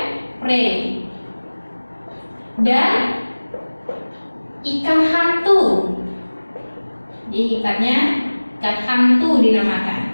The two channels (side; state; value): both; inverted; correlation -1.00